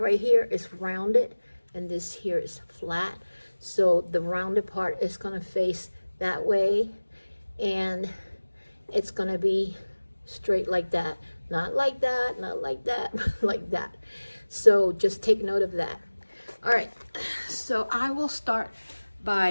here is rounded and this here is flat. So the rounded part is going to face that way, and it's going to be straight like that. Not like that, not like that, like that. So just take note of that. All right, so I will start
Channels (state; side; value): inverted; both; correlation -1.00